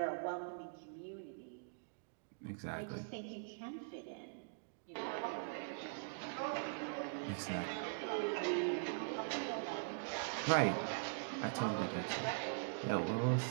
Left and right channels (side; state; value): left; silent; digital silence